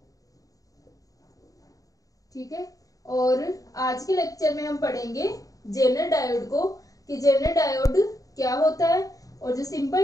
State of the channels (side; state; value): right; late; 0.17 ms